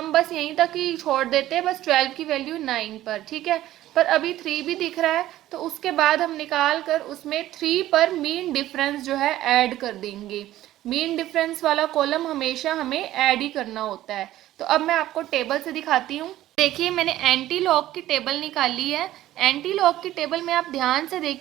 बस यहीं तक ही छोड़ देते, बस 12 की वैल्यू 9 पर। ठीक है, पर अभी 3 भी दिख रहा है तो उसके बाद हम निकाल कर उसमें 3 पर मीन डिफरेंस जो है ऐड कर देंगे। मीन डिफरेंस वाला कॉलम हमेशा हमें ऐड ही करना होता है। तो अब मैं आपको टेबल से दिखाती हूँ। देखिए, मैंने एंटी लॉग की टेबल निकाली है। एंटी लॉग की टेबल में आप ध्यान से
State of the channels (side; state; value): left; quieter; 14.3 dB